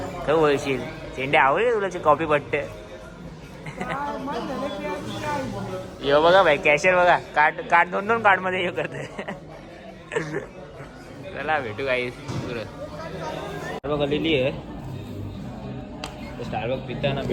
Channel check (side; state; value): both; identical; correlation 1.00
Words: तर बोलशील चेंडे आवडले तुला कॉफी पट्टे. यो बघा भाई कॅशियर बघा. कार्ड 2 कार्डमध्ये हे करते. चला भेटू काही पुरं. स्टारबक आलेली आहे. स्टारबक पिताना